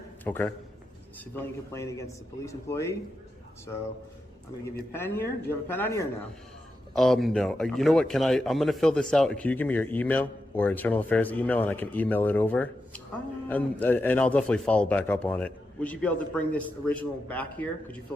Okay. Civilian complaint against the police employee. So I'm going to give you a pen here. Do you have a pen on you or no? No. You know what? I'm going to fill this out. Can you give me your email or internal affairs email, and I can email it over? And I'll definitely follow back up on it. Would you be able to bring this original back here? Could you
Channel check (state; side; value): normal; both; correlation 0.88